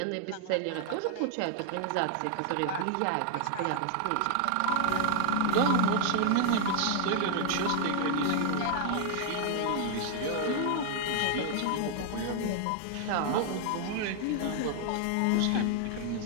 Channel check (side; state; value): both; different; correlation 0.00